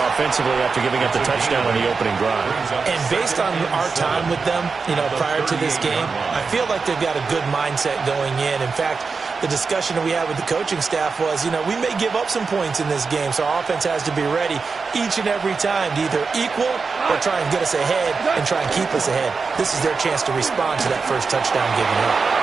offensively after giving up the touchdown on the opening drive. And based on our time with them, prior to this game, I feel like they've got a good mindset going in. In fact, the discussion that we had with the coaching staff was, we may give up some points in this game, so our offense has to be ready each and every time to either equal or try and get us ahead and try and keep us ahead. This is their chance to respond to that first touchdown given up.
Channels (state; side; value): quieter; left; 4.8 dB